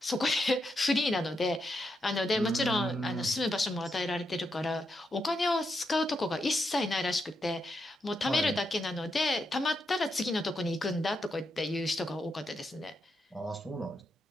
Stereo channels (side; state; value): both; normal; correlation 0.83